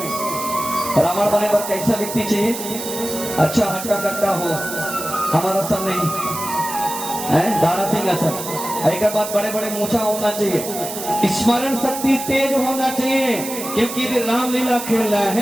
रावण बने पर कैसा व्यक्ति चाहिए? अच्छा हटका कट्टा हो, हमारा सब नहीं है, दारा सिंह असर। एक बात, बड़े बड़े मूछा होना चाहिए, स्मरण शक्ति तेज होना चाहिए, क्योंकि रामलीला खेल रहा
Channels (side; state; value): right; noise; hiss, 8 dB below the sound